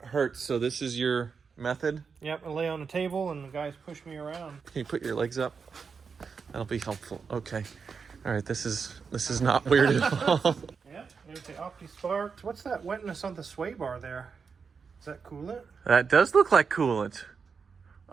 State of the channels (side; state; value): left; quieter; 5.6 dB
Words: hurts. So this is your method? Yep, I lay on the table and the guys push me around. Can you put your legs up? That'll be helpful. Okay. All right, this is not weird at all. Yep, there's the Opti Sparks. What's that wetness on the sway bar there? Is that coolant? That does look like coolant.